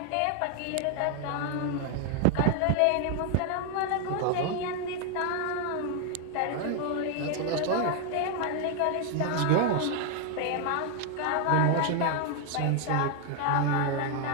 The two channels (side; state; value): both; different; correlation 0.00